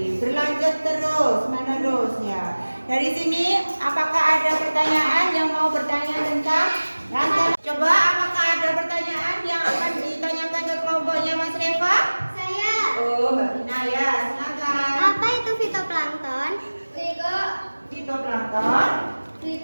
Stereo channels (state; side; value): inverted; both; correlation -1.00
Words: Berlanjut terus, menerus ya. Dari sini, apakah ada pertanyaan yang mau bertanya tentang rantai? Coba, apakah ada pertanyaan yang akan ditanyakan ke kelompoknya Mas Reva? Saya. Oh, Mbak Vina ya, silakan. Apa itu fitoplankton? Fitoplankton.